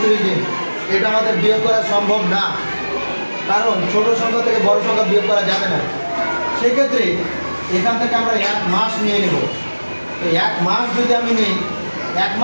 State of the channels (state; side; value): inverted; both; correlation -1.00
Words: দিন। এটা আমাদের বিয়োগ করা সম্ভব না, কারণ ছোট সংখ্যা থেকে বড় সংখ্যা বিয়োগ করা যাবে না। সেক্ষেত্রে এখান থেকে আমরা 1 মাস নিয়ে নেব। এই 1 মাস যদি আমি নিই, 1